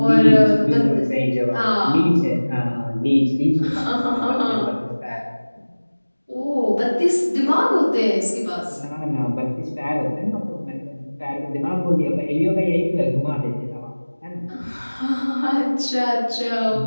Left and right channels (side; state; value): both; inverted; correlation -1.00